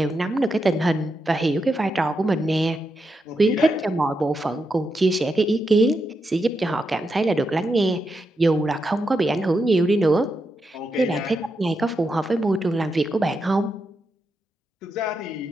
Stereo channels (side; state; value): both; normal; correlation 0.85